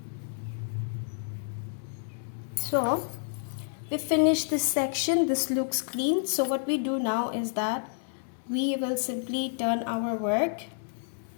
So we finished this section. This looks clean. So what we do now is that we will simply turn our work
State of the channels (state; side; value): silent; right; 58 dB below the other